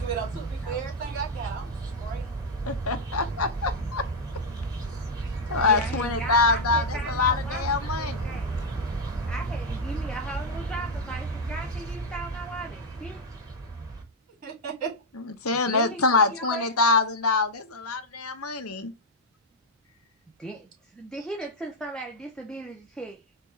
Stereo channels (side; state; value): both; normal; correlation 0.00